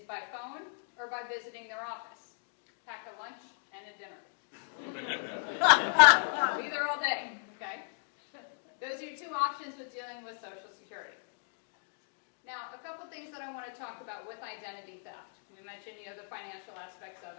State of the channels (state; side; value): silent; right; digital silence